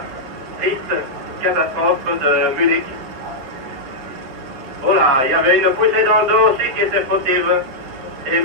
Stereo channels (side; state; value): left; late; 7.8 ms